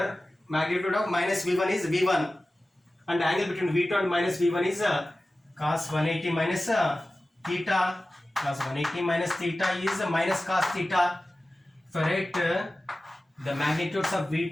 magnitude of minus v1 is v1 and angle between v2 and minus v1 is cos 180 minus theta. Cos 180 minus theta is minus cos theta. If I write the magnitudes of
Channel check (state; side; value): normal; both; correlation 0.96